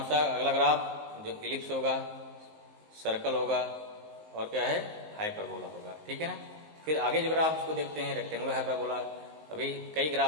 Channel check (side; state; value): left; late; 19 ms